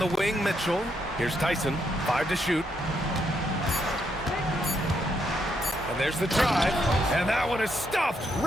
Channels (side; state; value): both; normal; correlation 0.77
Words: wing, Mitchell. Here's Tyson. 5 to shoot. And there's the drive. And that one is stuffed